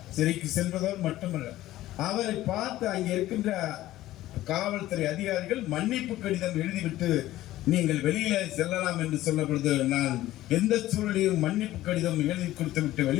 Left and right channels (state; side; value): quieter; right; 15.2 dB